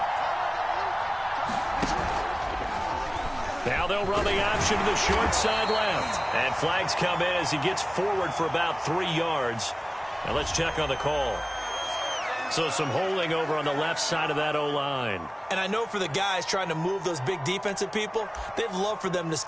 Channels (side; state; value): both; identical; correlation 1.00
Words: Now they'll run the option to the short side left. And flags come in as he gets forward for about 3 yards. Now let's check on the call. So some holding over on the left side of that O-line. And I know for the guys trying to move those big defensive people, they'd love for them to